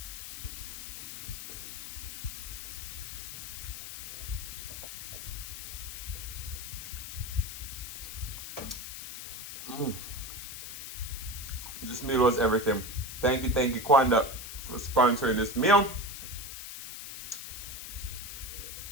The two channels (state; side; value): noise; left; hiss, 8 dB below the sound